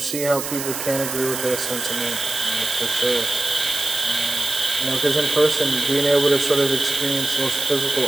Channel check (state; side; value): noise; right; hiss, 6 dB below the sound